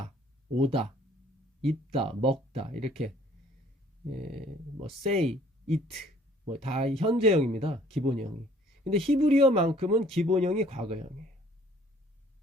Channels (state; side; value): normal; both; correlation 0.58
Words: 오다, 입다, 먹다 이렇게 뭐 say, eat 뭐 다 현재형입니다. 기본형이. 근데 히브리어만큼은 기본형이 과거형이에요.